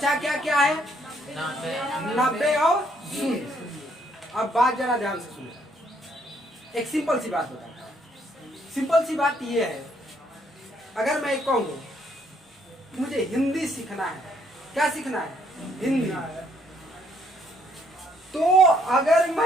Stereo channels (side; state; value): both; normal; correlation 0.68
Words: क्या क्या है? 90 और 0। अब बात जरा ध्यान से सुनो। एक सिंपल सी बात बताता हूं। सिंपल सी बात ये है, अगर मैं कहूँ मुझे हिंदी सीखना है, क्या सीखना है? हिंदी। तो अगर